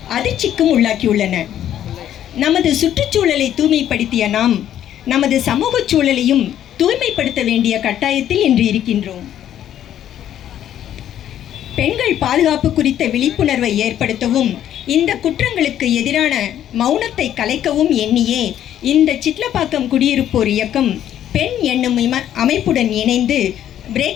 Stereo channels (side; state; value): right; quieter; 10.9 dB